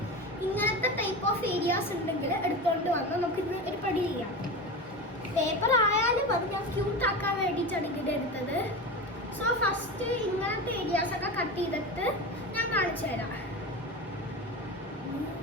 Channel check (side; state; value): both; normal; correlation 0.25